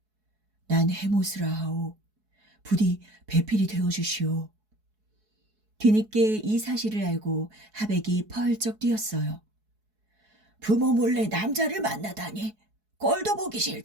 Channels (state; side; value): late; left; 4.7 ms